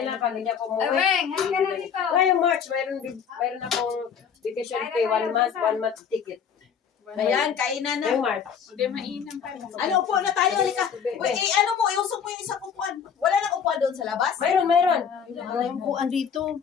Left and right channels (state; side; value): quieter; right; 7.3 dB